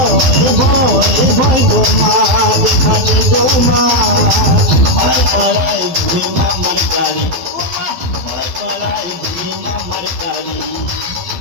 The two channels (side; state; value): left; late; 12 ms